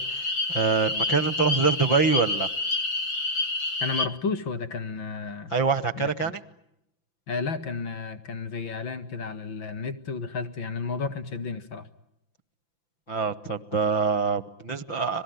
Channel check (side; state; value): right; late; 5.9 ms